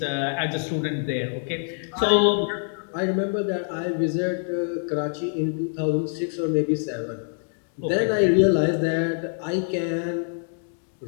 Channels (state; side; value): silent; right; digital silence